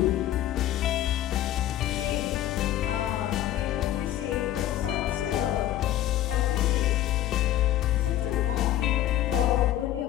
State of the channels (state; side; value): quieter; right; 12.8 dB